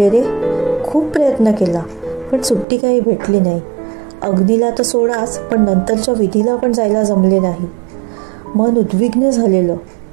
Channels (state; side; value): drops out; left; at 2.7 s